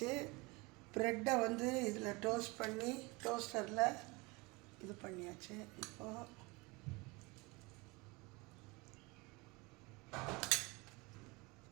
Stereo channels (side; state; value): left; quieter; 25.2 dB